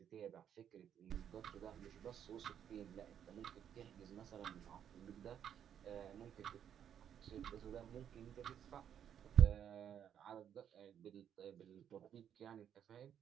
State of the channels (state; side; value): quieter; left; 9.2 dB